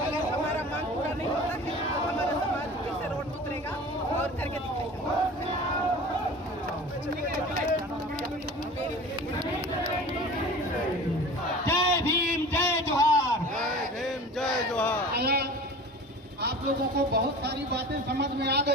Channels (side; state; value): both; normal; correlation 0.39